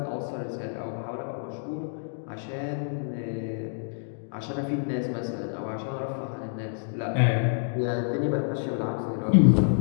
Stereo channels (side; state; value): right; silent; digital silence